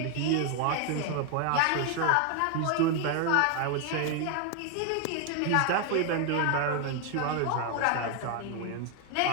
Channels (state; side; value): different; both; correlation 0.01